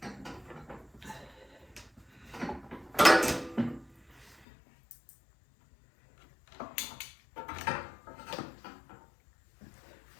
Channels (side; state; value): right; drops out; at 4.4 s